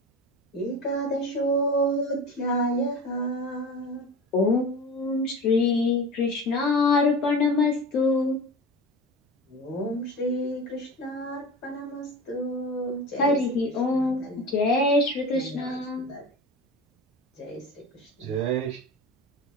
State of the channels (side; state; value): both; normal; correlation 0.32